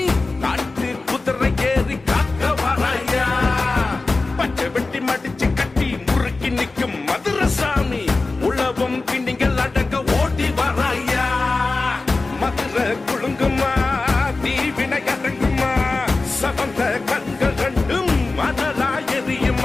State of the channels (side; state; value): right; quieter; 3.5 dB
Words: காட்டு குதிரை ஏறி காக்க வராயா பச்சை வெட்டி மடிச்சு கட்டி முறுக்கி நிற்கும் மதுரசாமி உள்ளவம் பின்னிகள் அடக்க ஓட்டி வராயா மதுரை குழுங்குமா தீவினை அடங்குமா சவந்த கண்கள் ரெண்டும் மணலா